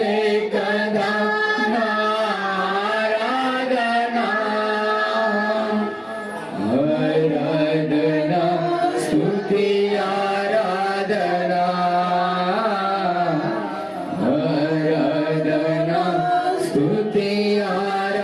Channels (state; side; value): identical; both; correlation 1.00